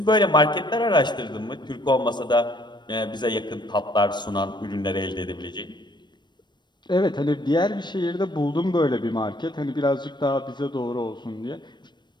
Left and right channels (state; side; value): late; right; 0.22 ms